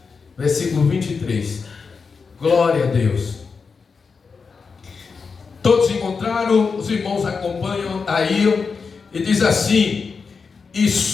Versículo 23. Glória a Deus. Todos encontraram? Os irmãos acompanham aí. E diz assim: e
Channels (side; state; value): right; quieter; 5.1 dB